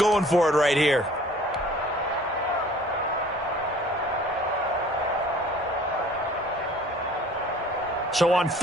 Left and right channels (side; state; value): both; normal; correlation 0.52